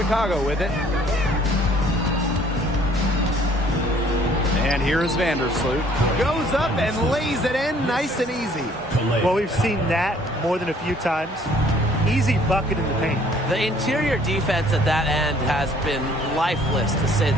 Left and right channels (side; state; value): both; normal; correlation 0.58